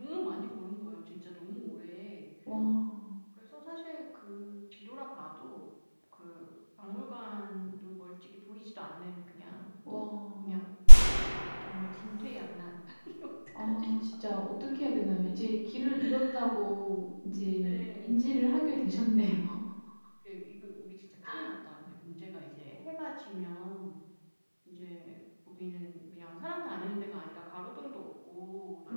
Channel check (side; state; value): both; inverted; correlation -1.00